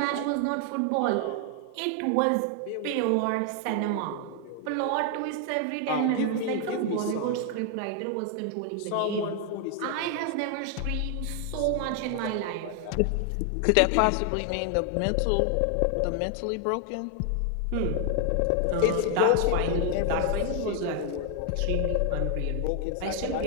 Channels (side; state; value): both; different; correlation 0.00